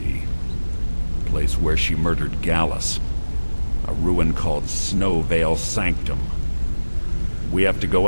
The place where she murdered Gallus. A ruin called Snowvale Sanctum. We have to go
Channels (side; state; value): both; inverted; correlation -1.00